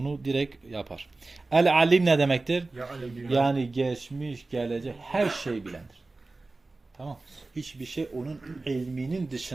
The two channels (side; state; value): left; quieter; 3.3 dB